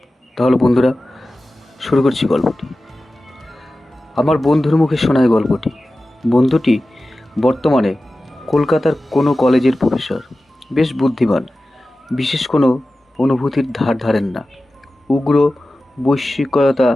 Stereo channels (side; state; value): both; normal; correlation 0.95